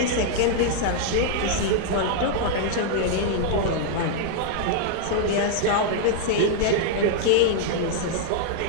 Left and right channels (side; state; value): both; different; correlation -0.01